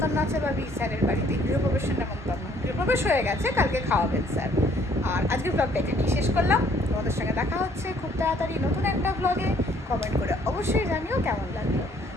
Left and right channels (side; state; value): both; normal; correlation 0.62